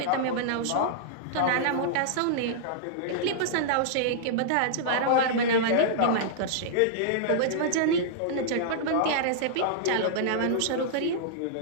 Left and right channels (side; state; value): both; different; correlation -0.02